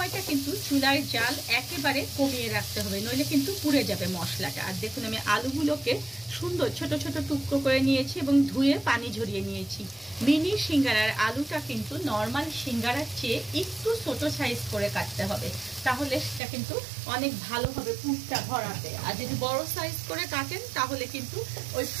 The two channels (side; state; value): left; drops out; at 16.4 s